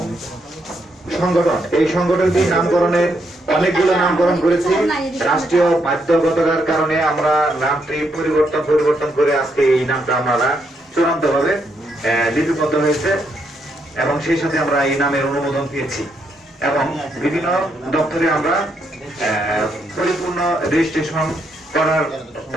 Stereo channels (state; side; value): normal; both; correlation 0.77